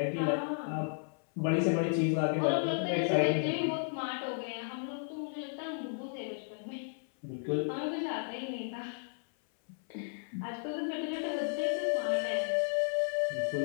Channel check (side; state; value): right; silent; 55 dB below the other